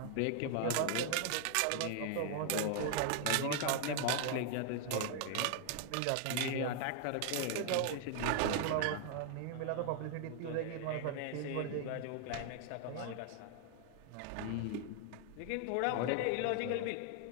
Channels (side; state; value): both; different; correlation 0.00